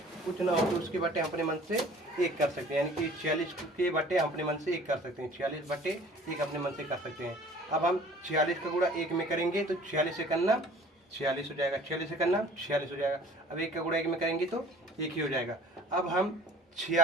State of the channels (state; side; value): normal; both; correlation 0.49